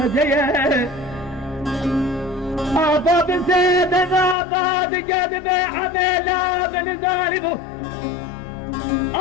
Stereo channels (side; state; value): right; drops out; at 4.4 s